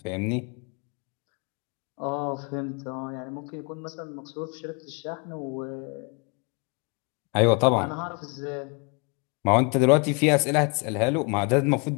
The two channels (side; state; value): right; quieter; 33.2 dB